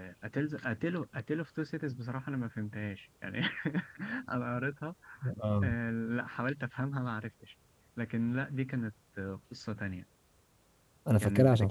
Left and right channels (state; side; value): identical; both; correlation 1.00